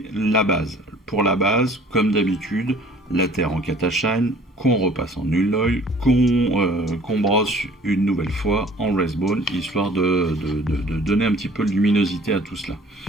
la base. Pour la base, comme d'habitude, la terre en Catashine, qu'on repasse en Null Oil, qu'on brosse une nouvelle fois en Wraithbone, histoire de donner un petit peu de luminosité à tout cela.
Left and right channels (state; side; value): normal; both; correlation 0.52